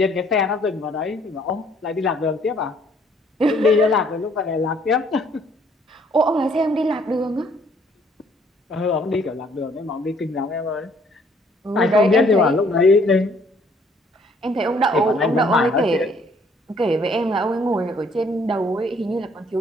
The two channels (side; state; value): both; normal; correlation 0.62